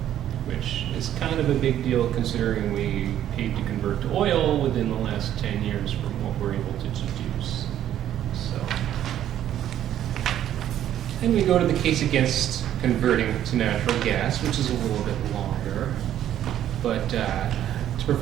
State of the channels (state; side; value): quieter; left; 11.4 dB